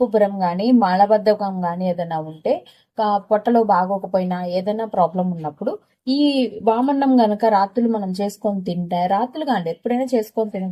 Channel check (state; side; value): identical; both; correlation 1.00